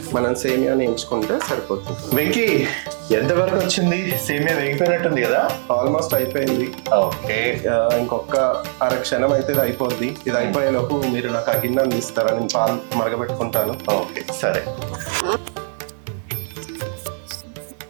మనం సేమియాని ఎంచుకుంటే సరిపోతుంది. వెంకీ, ఎంతవరకు వచ్చింది? సేమియా వేగిపోయినట్టుంది కదా? ఆల్మోస్ట్ అయిపోయింది. ఓకే, ఇంకొక అరక్షణం అయితే ఇది అయిపోద్ది. ఇది అయిపోయేలోపు మీరు నాకు ఆ గిన్నె అందిస్తారా? నేను పాలు మరగబెట్టుకుంటాను. ఓకే సరే.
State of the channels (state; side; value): silent; left; 61 dB below the other